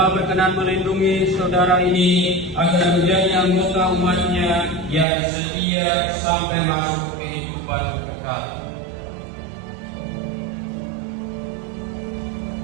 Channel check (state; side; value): drops out; left; at 5.1 s